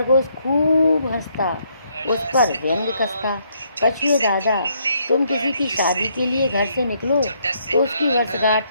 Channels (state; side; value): inverted; both; correlation -0.72